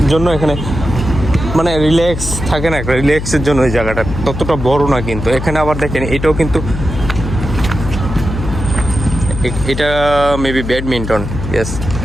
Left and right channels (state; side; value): noise; left; hum, 6 dB below the sound